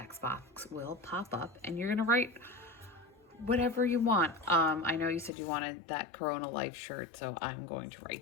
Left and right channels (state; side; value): drops out; right; at 5.3 s